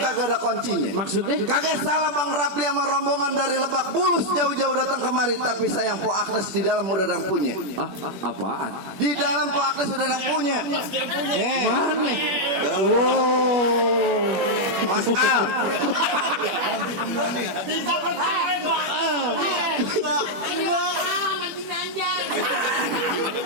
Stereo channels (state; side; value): late; left; 21 ms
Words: ada kuncinya. Maksudnya? Kagak salah Bang Rapli sama rombongan dari Lebak Bulus jauh-jauh datang kemari, tapi sayang Po Agnes di dalam udah ada yang punya. Apaan? Di dalam Po Agnes udah ada yang punya. Mana? Wow. Mas Al.